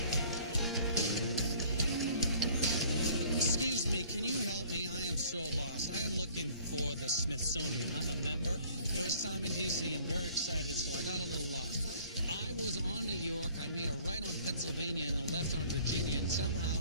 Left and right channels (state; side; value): inverted; both; correlation -0.54